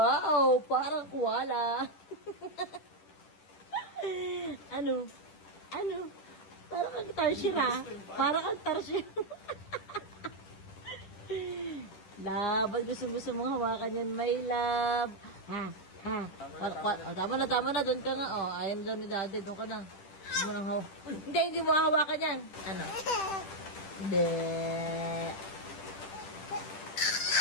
parang koala. Ano? Ano? Parang kang tarsier ha? Parang kang tarsier. Love, ba't gusto mong hawakan yan, my love? Ha? Ha? Tama na, doon ka nga. Oh, ayun doon ni daddy, doon ka na. Hindi mo nang hindi mo hawakan yan. Ano? Hindi.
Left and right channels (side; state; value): right; late; 10 ms